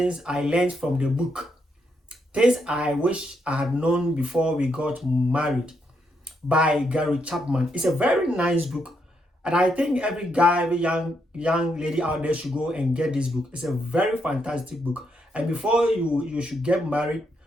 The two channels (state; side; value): normal; both; correlation 0.78